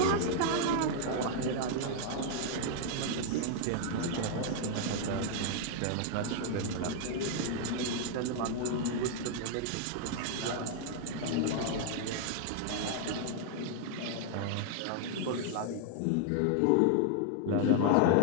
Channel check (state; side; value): different; both; correlation 0.00